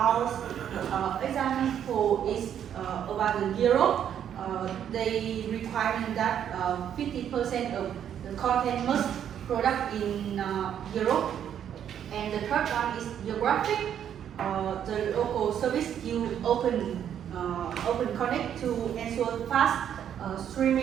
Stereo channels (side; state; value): left; quieter; 9.4 dB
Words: Example is about the Europe. They require that 50% of the content must product in Europe. And the third one is geographic. The local service you open connect to ensure fast